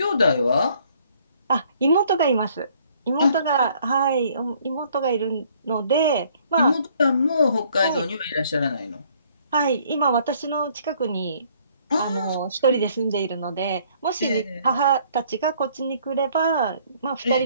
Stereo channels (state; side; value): inverted; both; correlation -0.62